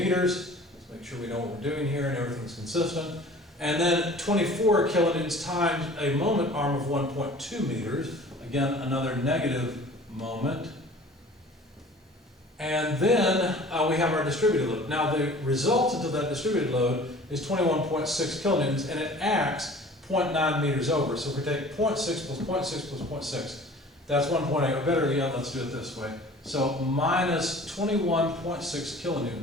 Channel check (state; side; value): normal; both; correlation 0.46